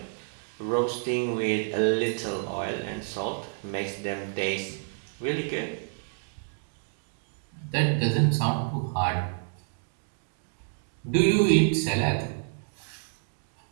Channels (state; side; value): silent; left; 59 dB below the other